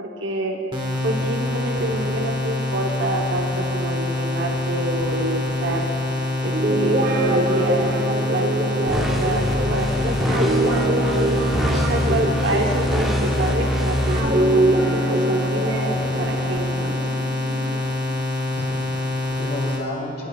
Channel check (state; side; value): normal; both; correlation 0.54